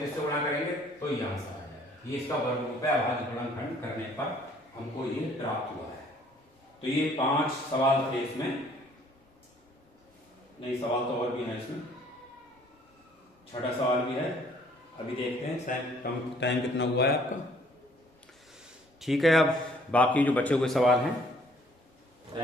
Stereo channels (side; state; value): both; normal; correlation 0.60